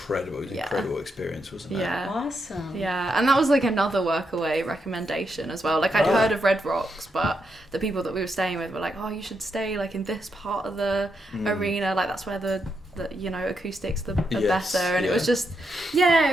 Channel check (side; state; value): both; normal; correlation 0.82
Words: It was an Yeah. incredible experience, wasn't it? Yeah. Awesome. Yeah, and that was like another Workaway recommendation as well. Like I'd heard of Red Rocks, but the people that we were staying with were like, "Oh, you should stay like in this part of the arena. Like that's where the acoustics are Yes, better." And yeah.